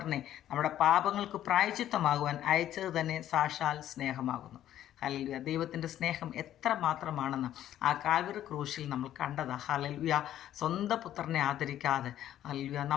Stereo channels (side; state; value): right; quieter; 11.9 dB